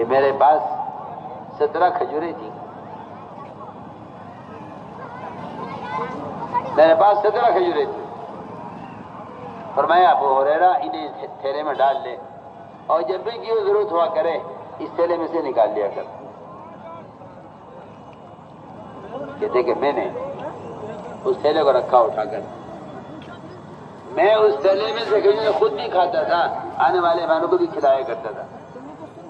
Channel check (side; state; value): both; identical; correlation 1.00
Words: میرے پاس 17 کھجوریں تھیں، فرمایا ابو ہریرہ انہیں تھیلے میں ڈال لے، اور جب بھی کی ضرورت ہوا کرے اس تھیلے میں سے نکال لیا کر۔ کہتے کہ میں نے اس تھیلے کو رکھا اٹھا کر، میں اس تھیلے میں سے کھجوریں خود بھی کھاتا تھا، آنے والے مہمانوں کو بھی کھلایا کرتا تھا۔